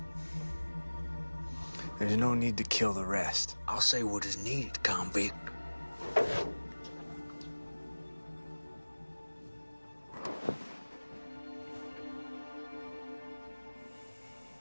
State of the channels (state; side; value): inverted; both; correlation -1.00